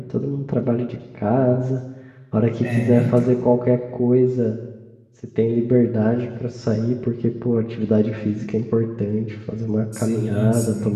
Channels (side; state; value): both; identical; correlation 1.00